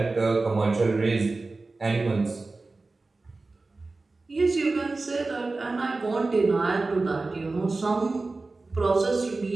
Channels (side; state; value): left; quieter; 3.5 dB